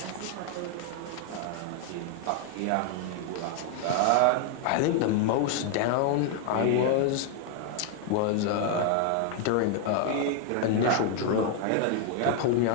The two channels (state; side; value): different; both; correlation 0.00